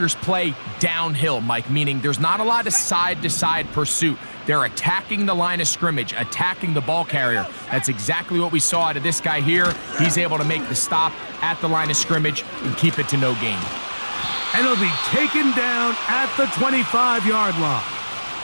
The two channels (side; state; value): both; inverted; correlation -1.00